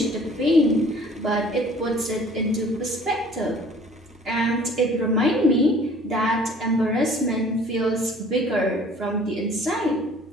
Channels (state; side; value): normal; both; correlation 0.52